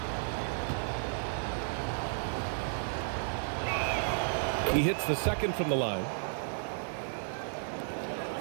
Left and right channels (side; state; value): left; silent; digital silence